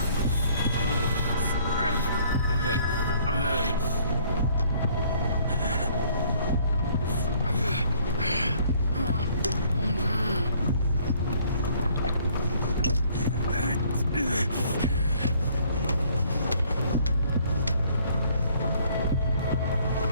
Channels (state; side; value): inverted; both; correlation -0.61